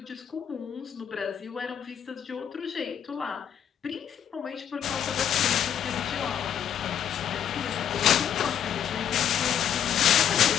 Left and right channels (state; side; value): quieter; right; 9.1 dB